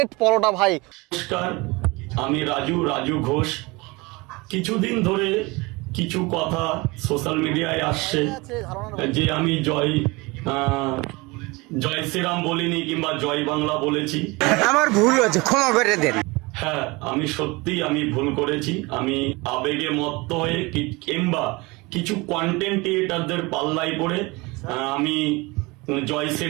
পরোটা ভাই। নমস্কার, আমি রাজু ঘোষ। কিছুদিন ধরে কিছু কথা সোশ্যাল মিডিয়ায় আসছে যে আমি জয় শ্রীরাম বলিনি কিংবা জয় বাংলা বলেছি। আমার ভুল হয়েছে, ক্ষমা করে দেন। হ্যাঁ, আমি ভুল করেছি। আমি আবেগে মত্ত হয়ে কিংবা কিছু কন্টেন্ট ক্রিয়েটারদের পাল্লায় পড়ে আমি জয়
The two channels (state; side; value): quieter; left; 24.5 dB